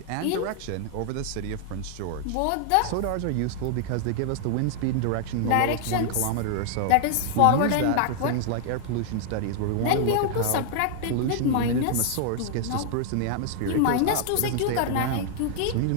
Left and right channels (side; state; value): both; different; correlation -0.01